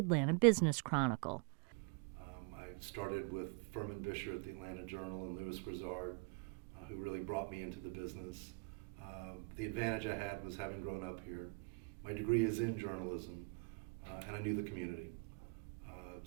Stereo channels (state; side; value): quieter; left; 30.8 dB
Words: Business Chronicle. I started with Furman Bisher at the Atlanta Journal and Louis Grizzard, who really brought me into the business. The advantage I had was having grown up here. My degree is in journalism, and I knew the community.